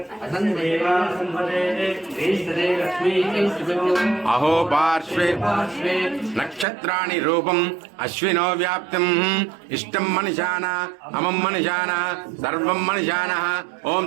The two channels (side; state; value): left; drops out; at 6.7 s